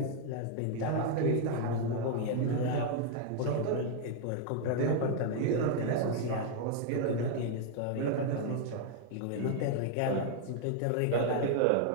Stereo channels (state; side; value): different; both; correlation 0.00